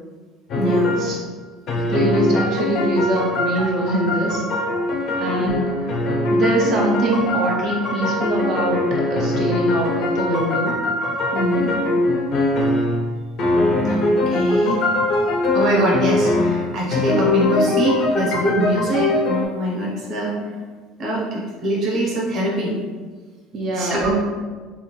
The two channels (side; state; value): both; normal; correlation 0.49